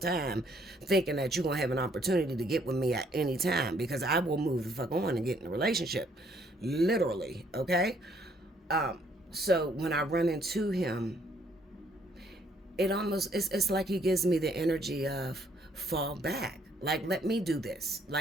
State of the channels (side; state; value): both; normal; correlation 0.66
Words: thinking that you're gonna have an opportunity to get with me at any time, because I will move the fuck on and get in a relationship, literally. Okay. So when I run into him, it almost, it's like he gives me the energy of fall back, like, let me do this,